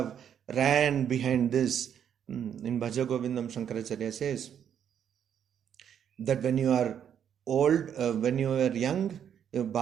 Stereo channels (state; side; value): quieter; left; 8.9 dB